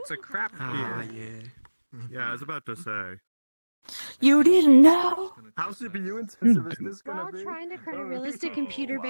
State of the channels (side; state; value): both; inverted; correlation -1.00